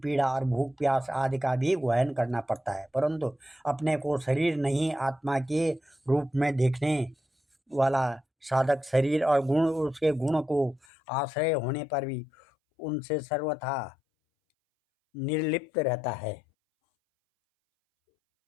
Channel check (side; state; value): right; drops out; at 10.9 s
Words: पीड़ा और भूख प्यास आदि का भी वहन करना पड़ता है। परंतु अपने को शरीर नहीं आत्मा के रूप में देखने वाला साधक शरीर और गुण उसके गुण को आश्रय होने पर भी उनसे सर्वथा निर्लिप्त रहता